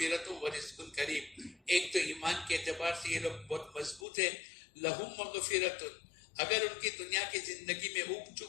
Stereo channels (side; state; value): right; drops out; at 4.0 s